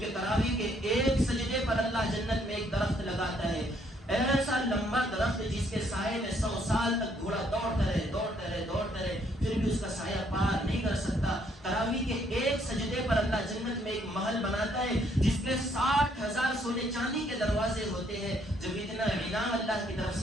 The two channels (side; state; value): both; normal; correlation 0.68